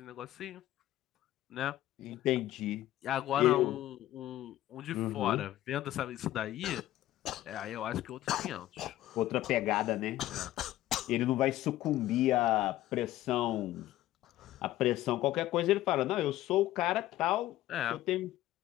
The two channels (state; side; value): quieter; right; 14.6 dB